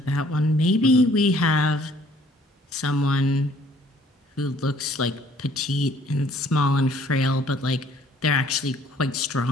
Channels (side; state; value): both; normal; correlation 0.59